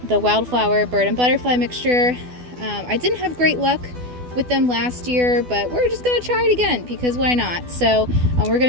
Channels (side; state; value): left; late; 12 ms